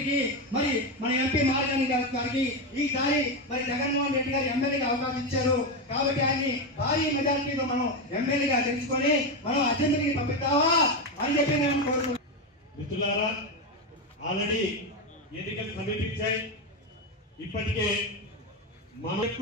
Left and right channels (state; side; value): normal; both; correlation 0.11